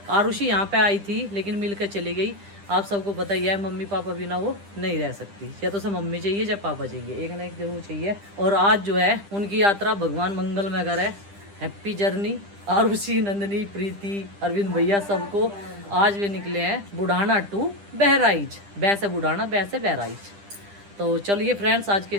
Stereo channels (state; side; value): late; left; 10 ms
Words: आरुषि यहाँ पे आई थी लेकिन मिल कर चली गई। आप सबको पता ही है मम्मी पापा बिना वो नहीं रह सकती, या तो उसे मम्मी चाहिए या पापा चाहिए, एक ना एक जरूर चाहिए। और आज जो है उनकी यात्रा भगवान मंगल में करे। हैप्पी जर्नी आरुषि, नंदनी, प्रीति, अरविंद भैया सबको। आज वे निकले हैं बुढ़ाना टू बहराइच, बैसे बुढ़ाना बैसे बहराइच। तो चलिए फ्रेंड्स आज के